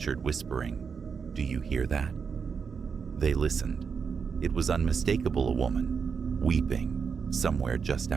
whispering, "Do you hear that?" They listened. It was unmistakable, a woman, weeping, somewhere just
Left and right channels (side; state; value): left; quieter; 6.0 dB